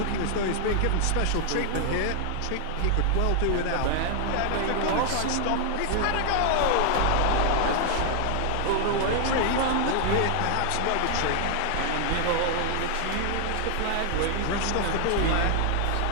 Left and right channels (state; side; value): different; both; correlation 0.00